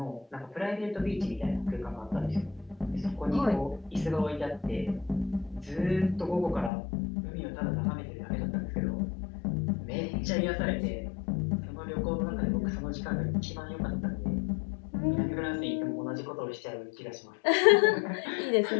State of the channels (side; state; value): right; drops out; at 6.7 s